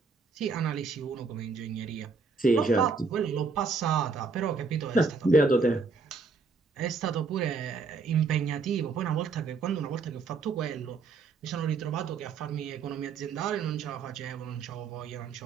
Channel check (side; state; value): left; quieter; 4.7 dB